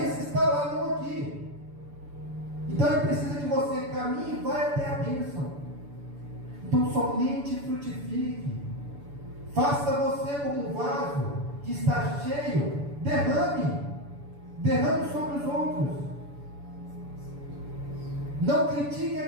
está lá, não aqui. Então ele precisa que você caminhe e vá até a bênção. Então somente frutifique. Faça você como um vaso que está cheio, derrame sobre os outros. Não critique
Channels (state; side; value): late; left; 7.0 ms